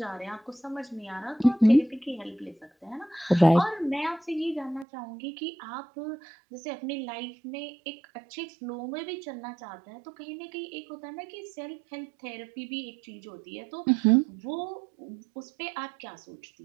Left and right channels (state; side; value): drops out; left; at 4.9 s